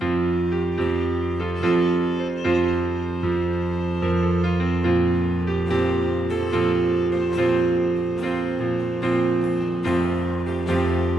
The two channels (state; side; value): normal; both; correlation 0.82